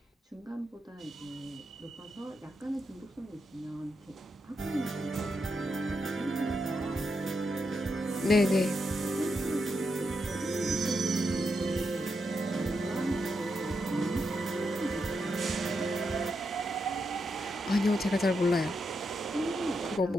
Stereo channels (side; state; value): both; normal; correlation 0.84